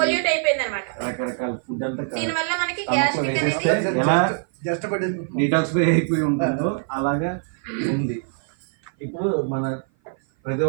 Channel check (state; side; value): silent; left; 56 dB below the other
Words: పొల్యూట్ అయిపోయింది అనమాట. రకరకాల ఫుడ్ అంతా దీనివల్ల మనకి గ్యాస్ట్రిక్ అనేది ఎలా డిటాక్సిఫై అయిపోయి ఉంటుందో అలాగా ఉంది. ఇప్పుడు మన ప్రతి